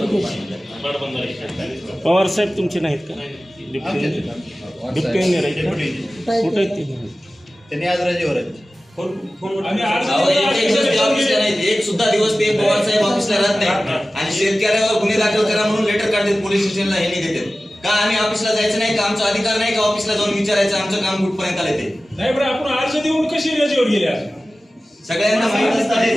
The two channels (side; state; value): both; normal; correlation 0.96